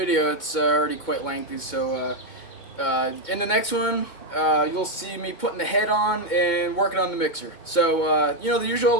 It's already quite lengthy, so in the next one you'll see me putting the head on and working on the mixer. So you know the usual:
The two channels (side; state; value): right; late; 2.1 ms